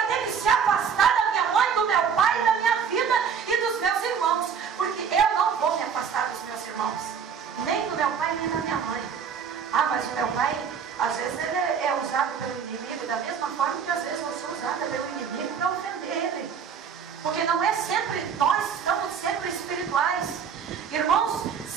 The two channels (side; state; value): left; quieter; 6.9 dB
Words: ter que se afastar da minha mãe, do meu pai, da minha vida e dos meus irmãos. Porque eu não vou me afastar dos meus irmãos. Nem do meu pai, nem da minha mãe. Ah, mas o meu pai, às vezes ele é usado pelo inimigo, da mesma forma que às vezes eu sou usada pelo inimigo para ofender ele. Porque não é sempre, nós estamos sempre espirituais. Irmãos,